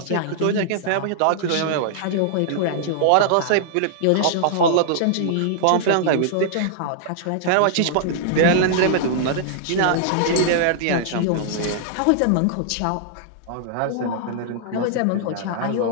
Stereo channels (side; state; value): both; different; correlation -0.01